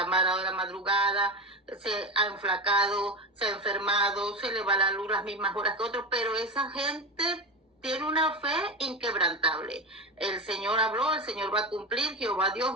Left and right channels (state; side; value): normal; both; correlation 0.21